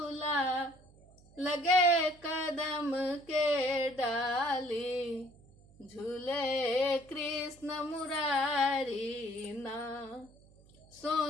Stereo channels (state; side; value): noise; right; hum, 26 dB below the sound